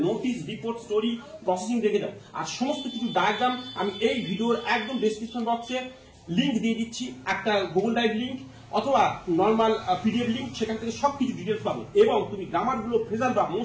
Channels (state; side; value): identical; both; correlation 1.00